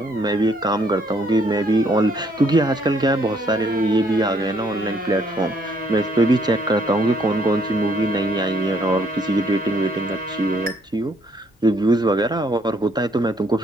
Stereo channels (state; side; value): normal; both; correlation 0.67